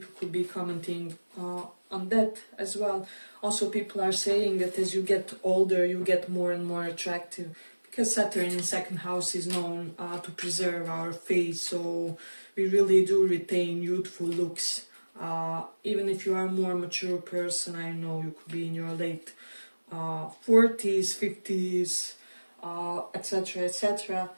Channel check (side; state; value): both; inverted; correlation -1.00